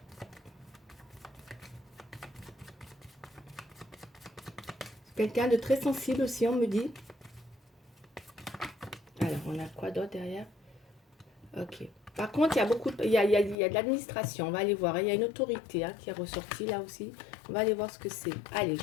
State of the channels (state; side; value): drops out; right; at 13.6 s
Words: Quelqu'un de très sensible aussi, on me dit. Alors, on a quoi d'autre derrière? Ok. Par contre, il y a beaucoup il y a de l'administration. On va aller voir. Il y a une autorité, hein, qui est ressortie là aussi. On va aller voir ce que c'est. Allez,